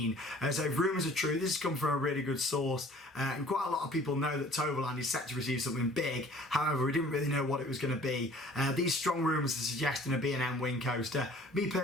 So if rumours are true, this has come from a really good source, and quite a lot of people know that Toverland is set to receive something big. However, we didn't really know what it was going to be. These strong rumours are suggesting a B&M Wing Coaster. Me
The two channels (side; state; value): both; normal; correlation 0.51